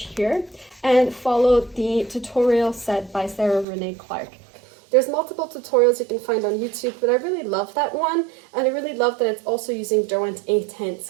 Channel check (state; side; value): drops out; left; at 3.7 s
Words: here and follow the tutorial set by Sarah Renee Clark. There's multiple tutorials you can find on YouTube, but I really love that one, and I really love that it's also using Derwent A-tints,